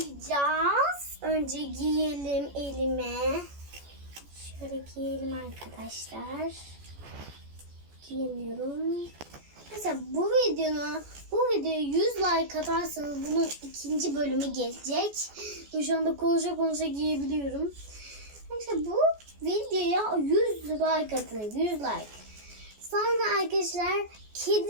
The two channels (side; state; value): left; late; 14 ms